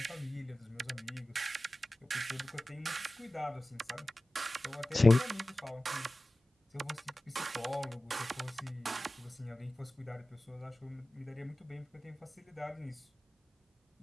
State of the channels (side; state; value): both; normal; correlation 0.96